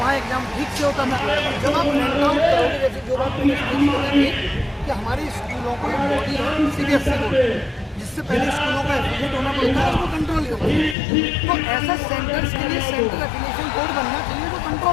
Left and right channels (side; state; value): right; drops out; at 11.0 s